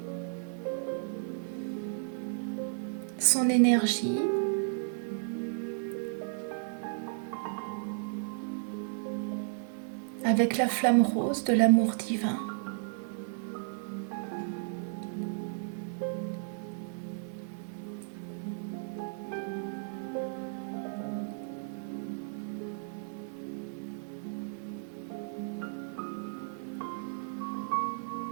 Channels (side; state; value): left; silent; digital silence